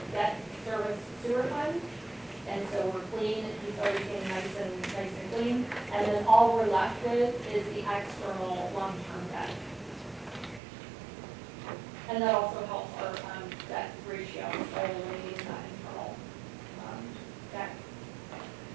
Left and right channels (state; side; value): drops out; left; at 10.6 s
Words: debt service sewer fund. And so we're clean, it's everything nice and clean. And then all we're left with is the external long-term debt. And that also helps our debt ratio, so eliminating that internal debt.